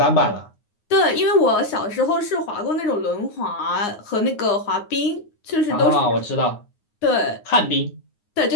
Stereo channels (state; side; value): late; right; 9.6 ms